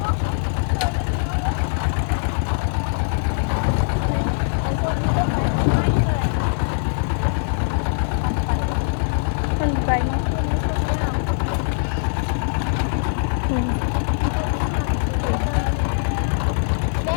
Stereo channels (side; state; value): right; silent; digital silence